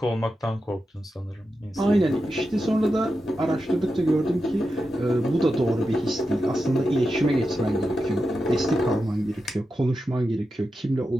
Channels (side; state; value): both; normal; correlation 0.90